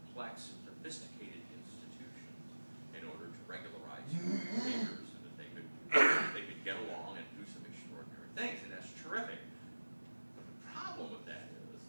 sophisticated institutions in order to regularize human behavior so that they could get along and do some extraordinary things, and that's terrific. But the problem with that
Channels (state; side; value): inverted; both; correlation -1.00